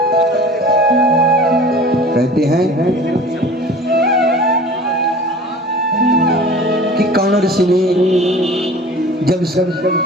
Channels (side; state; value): both; normal; correlation 0.42